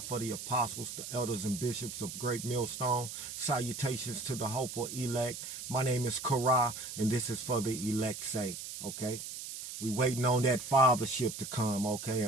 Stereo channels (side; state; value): right; noise; hiss, 8 dB below the sound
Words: the apostles, the elders, and bishops of Great Millstone. Salutations to the hopeful elect. My name is Korah, and this is for the elect's sake, okay? We waiting on that fathership to come, okay?